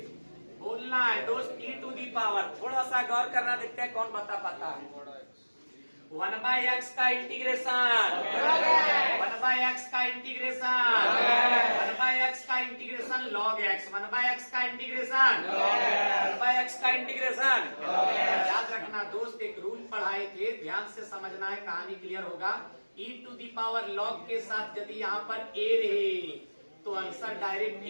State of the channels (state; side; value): inverted; both; correlation -1.00